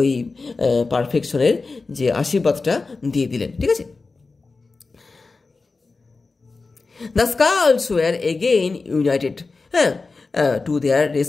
পারফেকশনের যে আশীর্বাদটা দিয়ে দিলেন, ঠিক আছে। The skulls were again united to their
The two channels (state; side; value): quieter; right; 4.0 dB